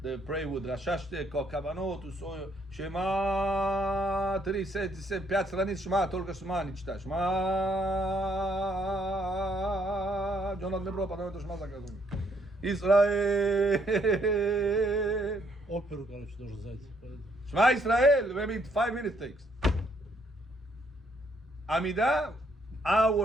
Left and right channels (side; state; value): both; normal; correlation 0.70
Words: they pray with Rashashte, Kavanot, Usoyo, Shema, 3, 5 страниц, Shema, только Shema, не читай, Shema, Джонат Мебро, потом это Shema заказывай. Israel, Оперу, короче, должен зайти. Shema Israel, maybe 5 minutes takes. Amida,